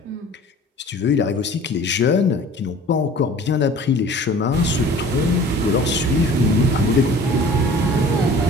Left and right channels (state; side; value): normal; both; correlation 0.46